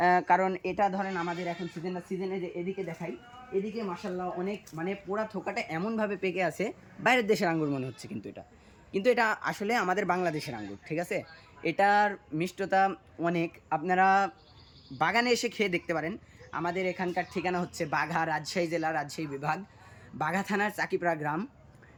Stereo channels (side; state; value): both; identical; correlation 1.00